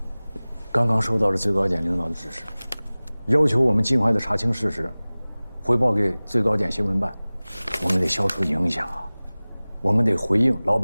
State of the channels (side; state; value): both; inverted; correlation -0.99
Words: 刚刚收到了最高检领导的指示，要求我们尽快的查清事实，汇报给最高检新闻办。我们得消除影响啊，我们得回应老